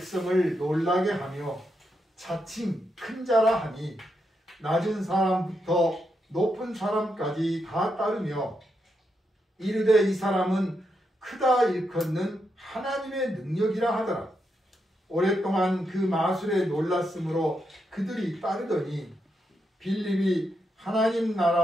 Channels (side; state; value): both; normal; correlation 0.83